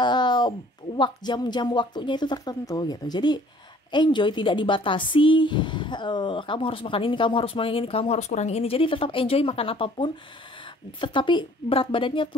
jam-jam waktunya itu tertentu gitu. Jadi enjoy, tidak dibatasi, kamu harus makan ini, kamu harus makan ini, kamu harus kurangi ini. Jadi tetap enjoy makan apapun, tetapi berat badannya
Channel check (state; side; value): normal; both; correlation 0.55